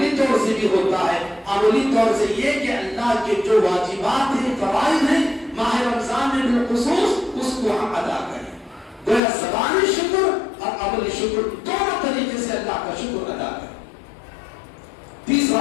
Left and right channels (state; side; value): drops out; right; at 9.2 s